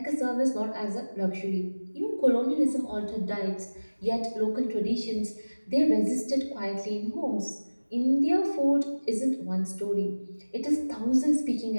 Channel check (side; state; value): both; inverted; correlation -1.00